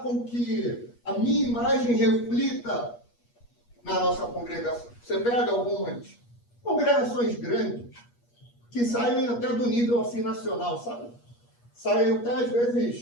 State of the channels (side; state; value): right; late; 8.4 ms